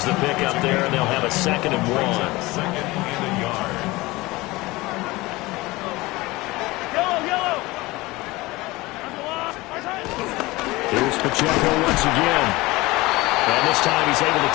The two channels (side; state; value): right; quieter; 20.9 dB